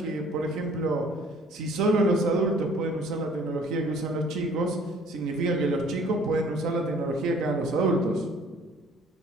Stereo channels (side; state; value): both; normal; correlation 0.55